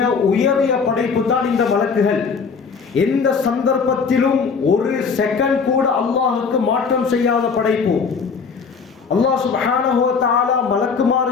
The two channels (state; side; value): quieter; right; 5.5 dB